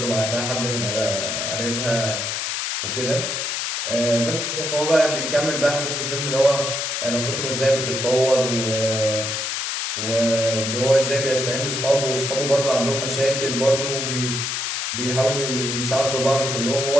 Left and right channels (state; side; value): noise; left; hiss, 2 dB below the sound